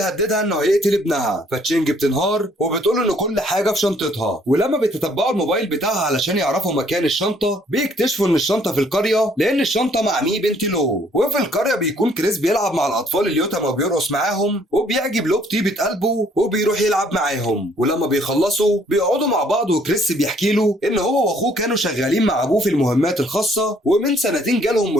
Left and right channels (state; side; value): normal; both; correlation 0.63